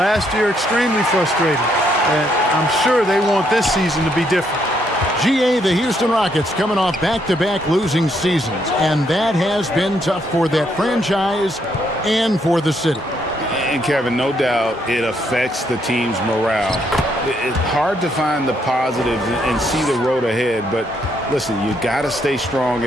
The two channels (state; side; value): normal; both; correlation 0.73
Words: year, extremely frustrating. And I'm sure they want this season to be different. GA, the Houston Rockets coming off back-to-back losing seasons, and that has been tough for that franchise and for the city. And Kevin, no doubt it affects the team's morale. It's hard to find the positives and see the road ahead, but listen, you got to stay strong